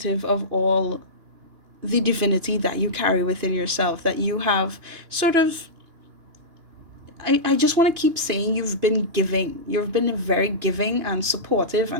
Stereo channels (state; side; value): late; left; 2.9 ms